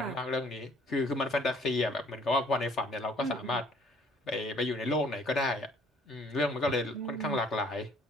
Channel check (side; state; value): both; normal; correlation 0.59